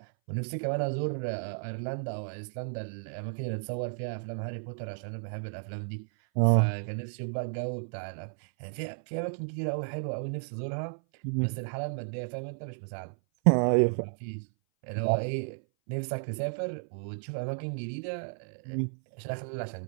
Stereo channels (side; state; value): left; silent; 56 dB below the other